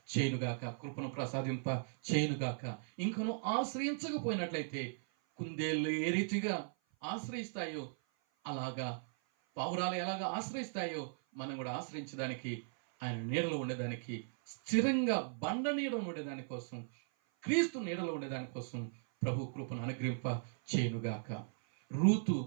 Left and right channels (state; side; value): silent; left; 53 dB below the other